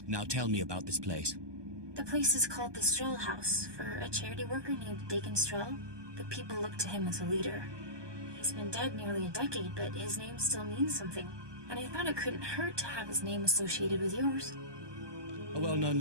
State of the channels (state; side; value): late; left; 1.2 ms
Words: Now tell me about this place. The place is called the Stroll House, for a charity worker named Dakin Stroll. The people look to him as a leader. He's been dead nearly a decade, but his name still means something. And I thought it couldn't hurt to have his name associated with yours. A well-known